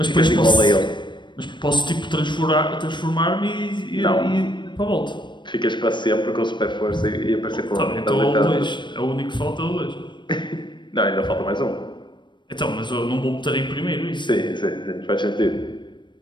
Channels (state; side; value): late; right; 0.22 ms